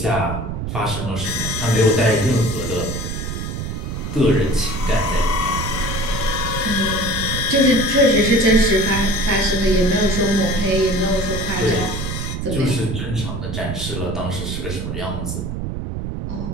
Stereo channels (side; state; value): right; noise; rumble, 5 dB below the sound